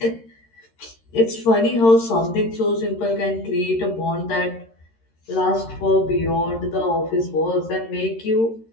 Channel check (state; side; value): late; right; 13 ms